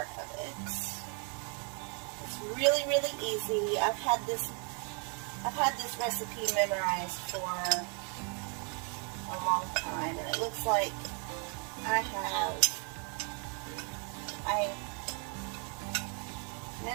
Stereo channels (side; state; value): left; quieter; 37.7 dB